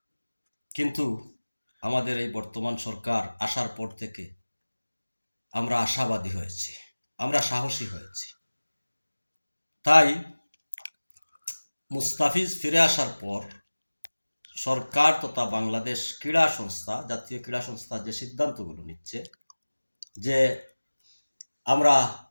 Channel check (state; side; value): inverted; both; correlation -1.00